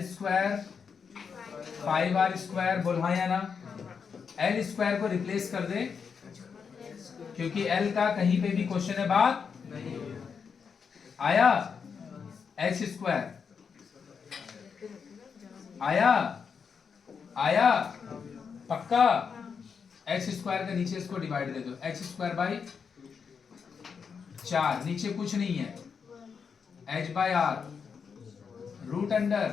square 5R square, बोल हाँ या ना? L स्क्वायर को रिप्लेस कर दे, क्योंकि L का कहीं पे भी क्वेश्चन है बात आया, H स्क्वायर आया पक्का, H स्क्वायर के नीचे इसको डिवाइड दे दो, H स्क्वायर बाई 4, नीचे कुछ नहीं है, H बाई R रूट अंडर,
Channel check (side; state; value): right; quieter; 6.2 dB